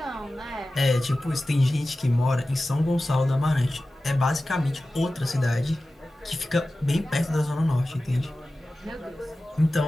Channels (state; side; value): normal; both; correlation 0.95